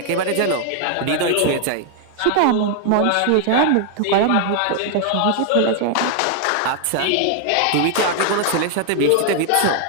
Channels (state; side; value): different; both; correlation 0.00